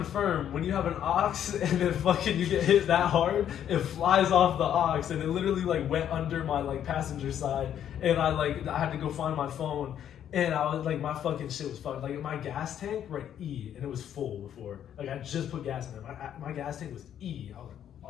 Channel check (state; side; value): quieter; right; 10.0 dB